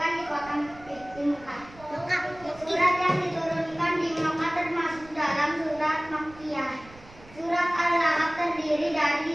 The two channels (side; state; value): right; noise; rumble, 21 dB below the sound